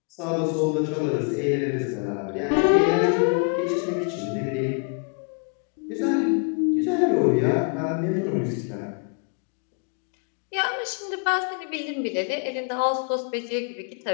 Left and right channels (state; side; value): quieter; right; 38.3 dB